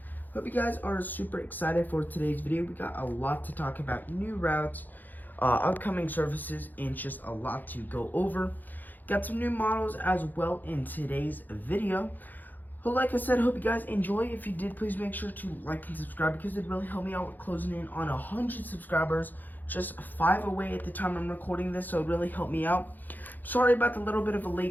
Hope you guys are super excited for today's video. We got a lot to talk about: new routes, upcoming services, and just a lot to go over. Got some new models as well in today's video. But like I said, hope you guys enjoy. If you did, please make sure to like and subscribe because it really helped me out with closing in on 100 subscribers. Just 5 away at the time I'm recording this, so it really helped me out. Sorry about the little bit of a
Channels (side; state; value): right; late; 0.086 ms